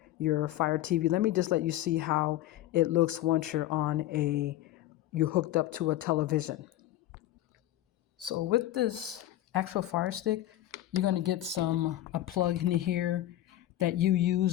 your Fire TV. Let me just let you see how it looks once you're hooked up to a television. So with this actual Fire Stick, you're going to get a plug in here that you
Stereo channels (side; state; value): right; quieter; 14.1 dB